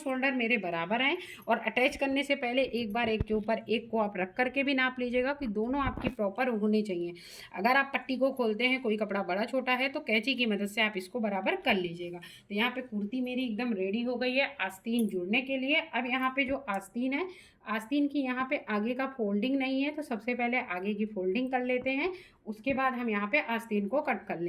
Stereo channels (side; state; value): both; identical; correlation 1.00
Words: मेरे बराबर हैं। और अटैच करने से पहले एक बार एक के ऊपर एक को आप रख करके भी नाप लीजिएगा कि दोनों आपकी प्रॉपर होनी चाहिए। अगर आप पट्टी को खोलते हैं, कोई कपड़ा बड़ा छोटा है, तो कैंची की मदद से आप इसको बराबर कर लीजिएगा। तो यहाँ पे कुर्ती मेरी एकदम रेडी हो गई है आस्तीन जुड़ने के लिए। अब यहाँ पे जो आस्तीन है, आस्तीन की यहाँ पे आगे का फोल्डिंग नहीं है, तो सबसे पहले आगे की फोल्डिंग कर लेते हैं, उसके बाद हम यहाँ पे आस्तीन को कट कर